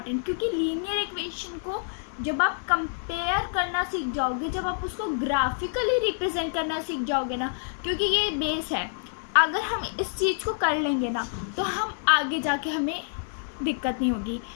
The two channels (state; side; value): silent; right; digital silence